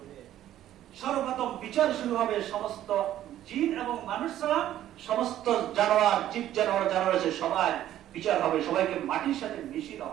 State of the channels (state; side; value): quieter; left; 12.5 dB